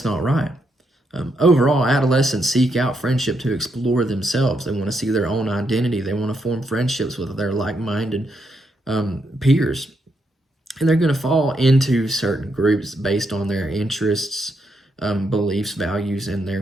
not right. Overall, adolescents seek out friendship to explore themselves. They want to see their own identity. They want to form friendships with their like-minded peers. And they're going to fall into certain groups based on their interests, beliefs, values, and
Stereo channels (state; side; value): normal; both; correlation 0.79